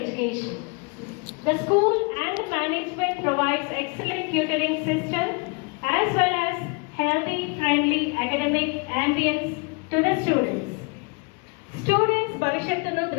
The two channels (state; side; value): quieter; right; 32.0 dB